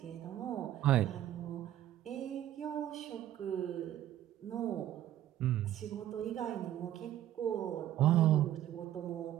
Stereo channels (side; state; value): left; quieter; 12.5 dB